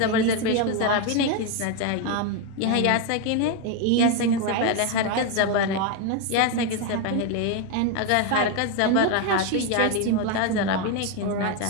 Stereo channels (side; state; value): both; different; correlation 0.02